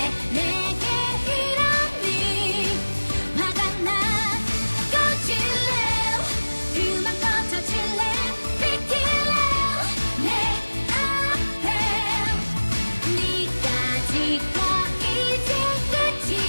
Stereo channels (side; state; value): both; inverted; correlation -1.00